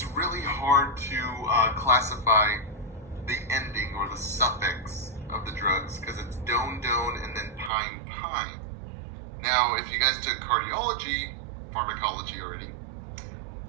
really hard to classify the ending or the suffix of the drugs because it's don and then pine. Now, if you guys took cardiology, pharmacology already,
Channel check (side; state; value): left; drops out; at 7.7 s